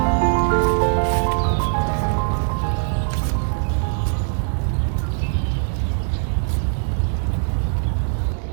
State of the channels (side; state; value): left; silent; 59 dB below the other